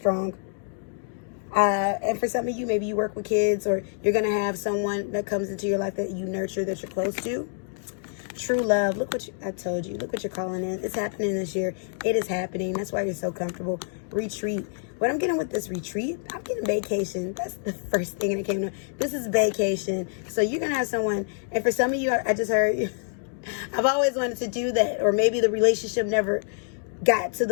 And for some of you, maybe you work with kids, or you're going to have someone that comes into your life that you nurture, that you're close to. True love. Look what I told you. Look what you're calling in. It's happening this year. It is happening. That's why you're so comfortable. Retreat. What I'm getting with this retreat, I'm getting vacation. That's the first thing that came to me. This is vacation. So you're going to have someone, and for some of you, I just heard, I've always wanted to do that. Or maybe the relationship never got to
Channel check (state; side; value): silent; right; 60 dB below the other